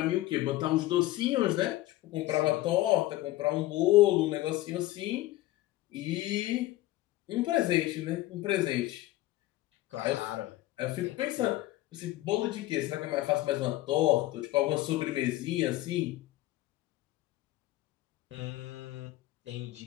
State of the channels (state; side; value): quieter; right; 16.5 dB